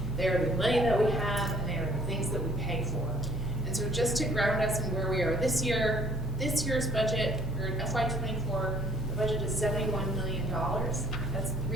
They are the money that we have, and they are the things that we pay for. And so just to ground us in where we are this year, this year's budget, or in FY24, the budget is $71 million. That's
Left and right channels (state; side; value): normal; both; correlation 0.59